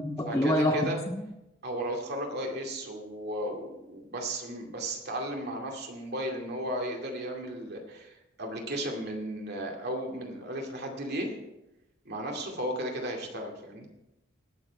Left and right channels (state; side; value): normal; both; correlation 0.34